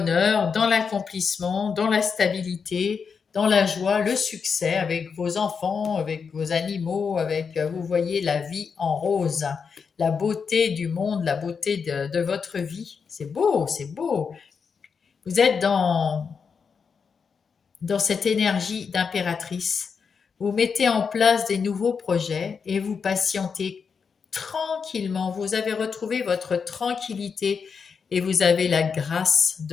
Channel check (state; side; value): quieter; right; 5.9 dB